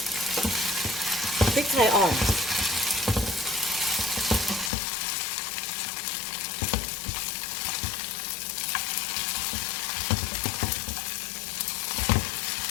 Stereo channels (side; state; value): right; drops out; at 4.7 s